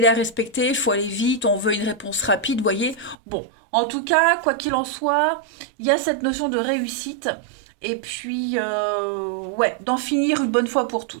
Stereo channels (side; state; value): left; drops out; at 3.2 s